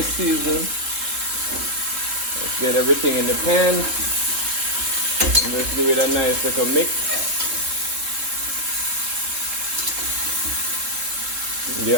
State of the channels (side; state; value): left; late; 3.7 ms